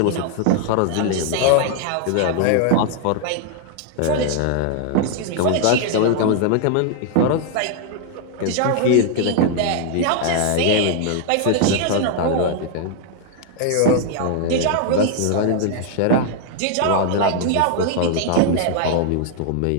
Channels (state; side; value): different; both; correlation 0.00